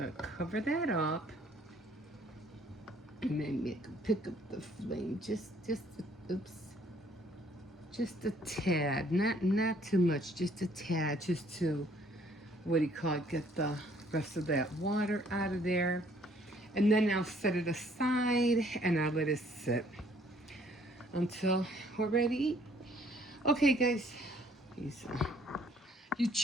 cover that up, and then pick up the flame just a tad, not too much, just a tad, just to get the rest of that water out of there. And then I'll set it aside and I'll let it sit until we're ready to eat. Okay, guys. You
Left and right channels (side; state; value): both; normal; correlation 0.62